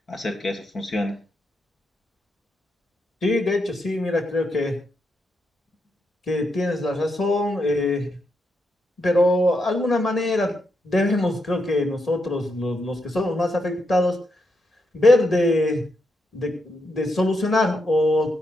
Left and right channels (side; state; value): both; normal; correlation 0.82